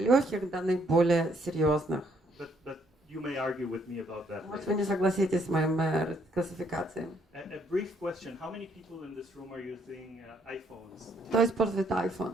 до наиболее серьезных. But you may argue with me about that. Может, вы не согласитесь с моим классификацией. A brief question: how many people in this room are using iPhones? Кто использует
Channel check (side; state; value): both; normal; correlation 0.69